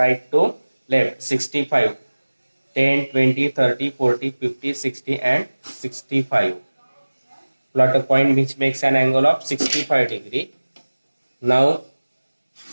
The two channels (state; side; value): inverted; both; correlation -1.00